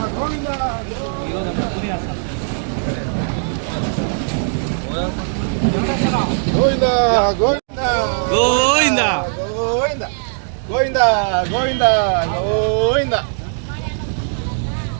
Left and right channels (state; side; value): silent; left; digital silence